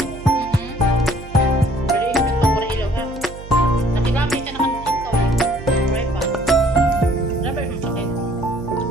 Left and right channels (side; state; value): right; noise; hum, 15 dB below the sound